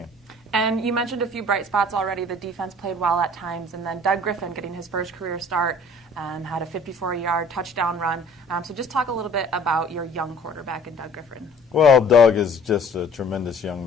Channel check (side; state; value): both; normal; correlation 0.51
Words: And you mentioned a few bright spots already. The defense played well at times, and then Doug Griffin getting his first career start, had a 54-yard touchdown run. So just talk a little bit about your young quarterback in Doug Griffin. Well, Doug is just a tremendous young